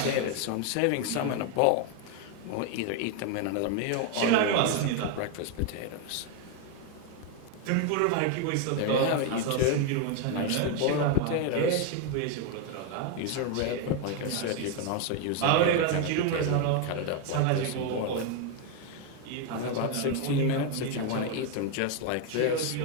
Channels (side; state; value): both; different; correlation 0.01